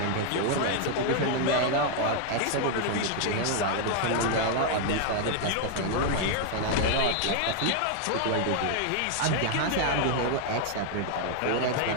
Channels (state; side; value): different; both; correlation 0.00